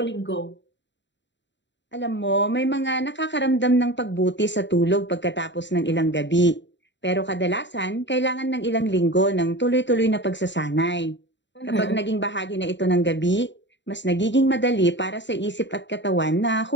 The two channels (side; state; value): right; late; 0.52 ms